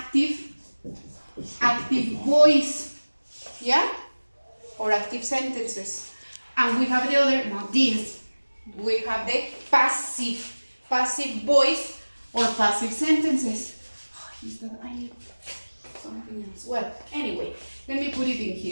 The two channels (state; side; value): inverted; both; correlation -1.00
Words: voice, yeah, or active sentences, and we have the other, not this. We have the passive voice or passive sentences. Oh, is that I need something else? Well, anyway, let me put it in